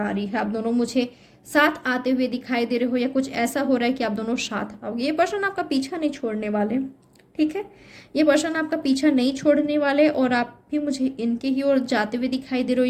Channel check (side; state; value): both; identical; correlation 1.00